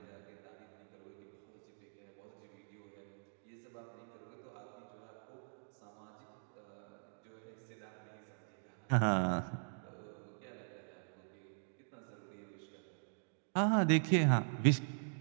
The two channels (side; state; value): left; silent; digital silence